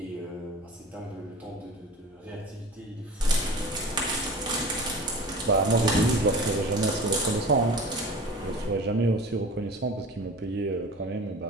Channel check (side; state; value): both; normal; correlation 0.38